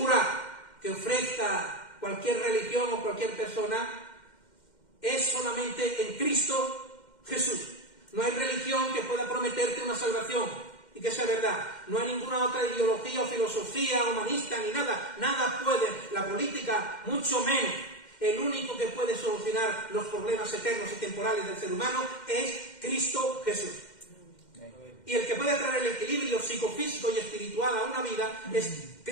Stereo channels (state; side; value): late; right; 2.1 ms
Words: que ofrezca cualquier religión o cualquier persona es solamente en Cristo Jesús. No hay religión que pueda prometerte una salvación y que sea verdad. No hay ninguna otra ideología o filosofía humanista ni nada. Nada puede, la política mucho menos. El único que puede solucionar los problemas eternos y temporales del ser humano es Cristo Jesús. Y el que puede traer el equilibrio psicofísico y espiritual a una vida es